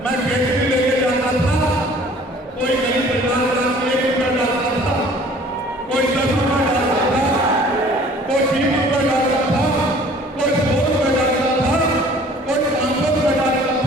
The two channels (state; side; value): normal; both; correlation 0.51